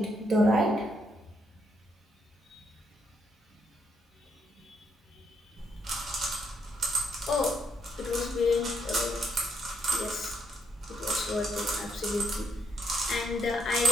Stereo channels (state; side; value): normal; both; correlation 0.75